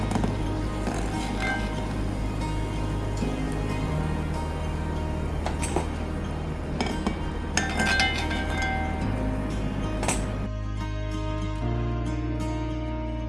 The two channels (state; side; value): identical; both; correlation 1.00